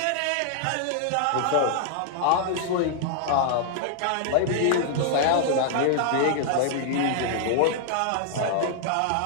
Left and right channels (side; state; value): both; different; correlation -0.01